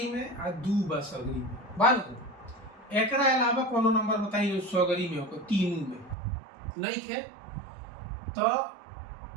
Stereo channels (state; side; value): drops out; left; at 6.2 s